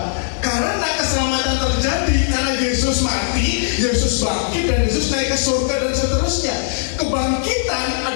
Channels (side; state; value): right; silent; digital silence